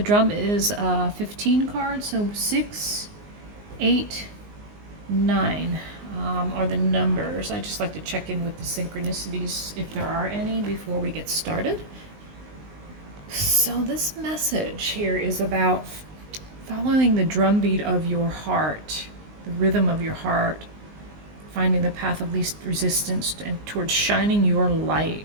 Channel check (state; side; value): late; left; 19 ms